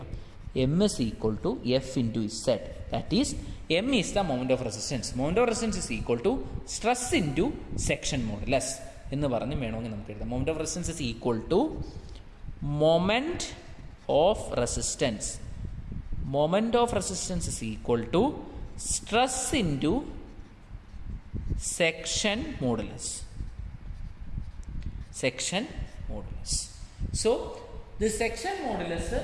M is equal to F into Z, that is M is the moment of resistance. Moment of resistance is equal to stress into section modulus എന്ന് പറഞ്ഞ് വേണമെങ്കിൽ നമുക്ക് എഴുതാം. Moment of resistance is equal to moment of resistance. Moment of resistance is equal to stress into section modulus. So this section modulus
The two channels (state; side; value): identical; both; correlation 1.00